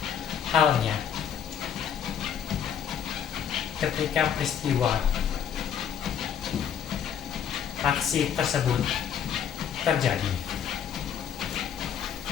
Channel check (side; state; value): right; quieter; 8.6 dB